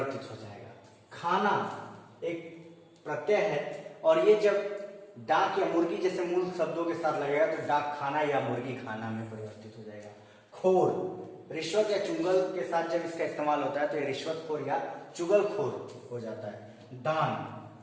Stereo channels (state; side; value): identical; both; correlation 1.00